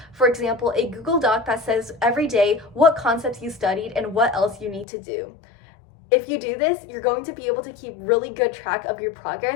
For example, a Google Doc that says every day what concepts you studied and what else you need to do. If you do this, you're going to be able to keep really good track of your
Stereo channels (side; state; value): right; drops out; at 4.9 s